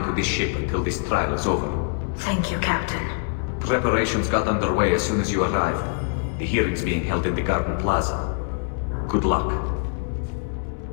to this ship until this trial is over. Thank you, Captain. Preparations got underway as soon as you arrived. The hearing's being held in the Garden Plaza. Good luck.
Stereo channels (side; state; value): right; silent; 62 dB below the other